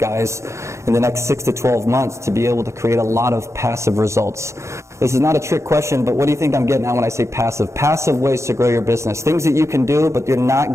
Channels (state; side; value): late; left; 0.14 ms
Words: in the next 6 to 12 months to be able to create a lot of passive results. This is not a trick question, but what do you think I'm getting at when I say passive? Passive ways to grow your business. Things that you can do, but you're